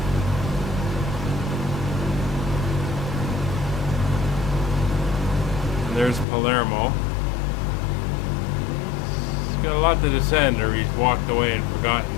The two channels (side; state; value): right; drops out; at 6.2 s